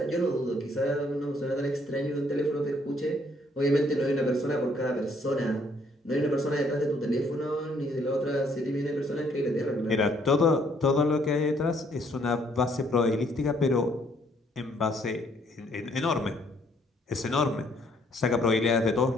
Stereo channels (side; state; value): both; normal; correlation 0.66